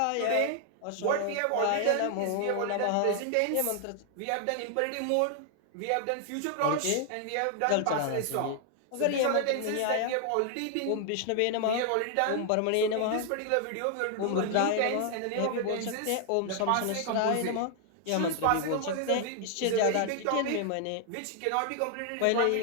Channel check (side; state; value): both; different; correlation 0.00